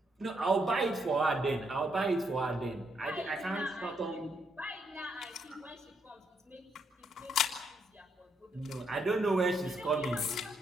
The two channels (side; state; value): both; normal; correlation 0.76